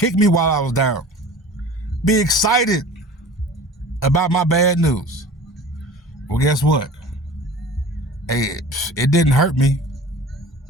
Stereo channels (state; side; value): normal; both; correlation 0.41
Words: I was down, be excited about my bad news. Well, guess what? Hey, it didn't hurt me.